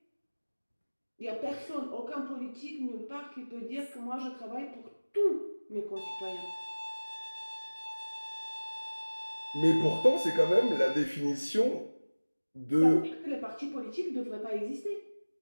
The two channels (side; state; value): both; inverted; correlation -1.00